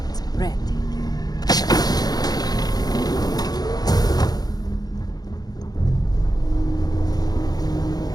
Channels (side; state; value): right; late; 0.19 ms